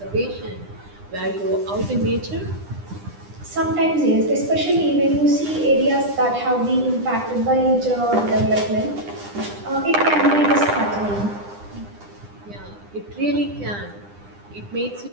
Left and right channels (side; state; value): left; late; 9.9 ms